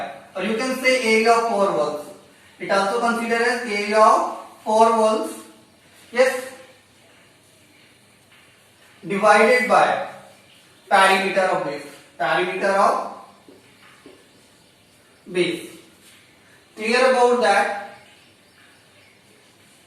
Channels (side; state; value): both; identical; correlation 1.00